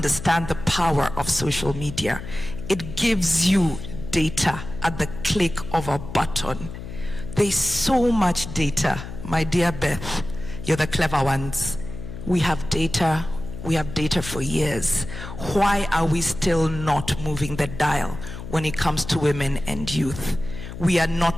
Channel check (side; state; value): left; noise; hum, 10 dB below the sound